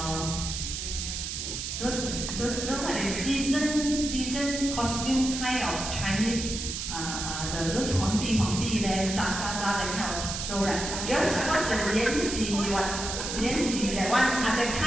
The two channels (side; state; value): right; noise; hiss, 4 dB below the sound